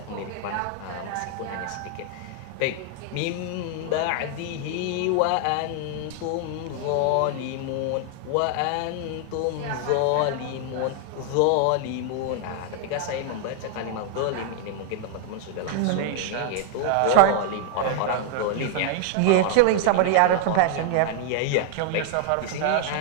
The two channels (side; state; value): both; different; correlation 0.00